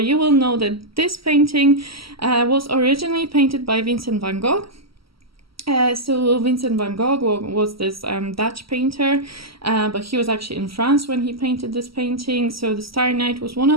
you will know that this painting was originally painted by Vincent Van Gogh. So Vincent Van Gogh was this Dutch painter, but he was actually in France when he painted this painting. So the Starry Night was one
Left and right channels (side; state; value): left; late; 0.75 ms